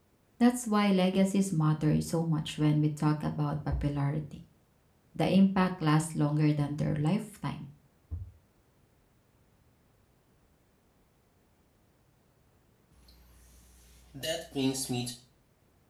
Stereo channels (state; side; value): identical; both; correlation 1.00